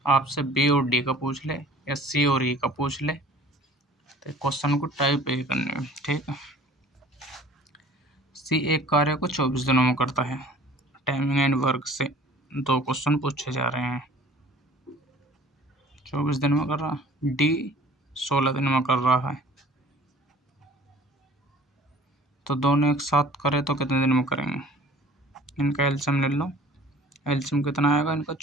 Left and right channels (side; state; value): both; normal; correlation 0.49